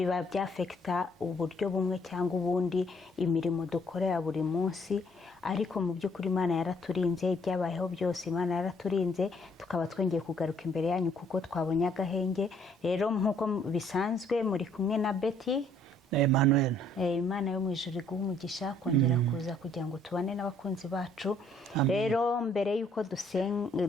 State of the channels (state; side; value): normal; both; correlation 0.64